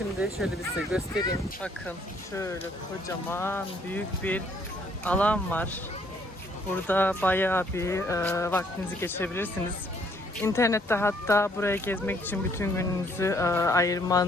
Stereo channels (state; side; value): normal; both; correlation 0.65